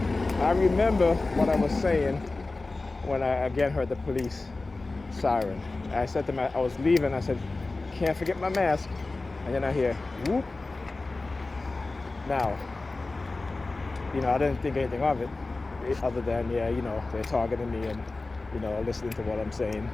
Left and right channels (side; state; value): right; quieter; 3.4 dB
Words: I remember what I was saying when I again heard the police siren. I said to I was leaving, I said, can't forget my mask. And then I hear, whoop. Now, I didn't think anything of it, other than, they're targeting me and, listening to what I'm saying,